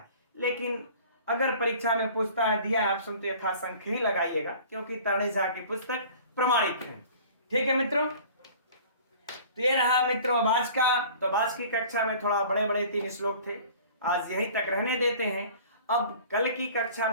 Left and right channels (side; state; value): both; inverted; correlation -0.46